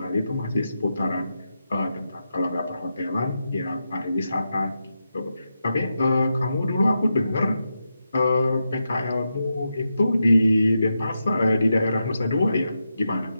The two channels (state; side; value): inverted; both; correlation -0.87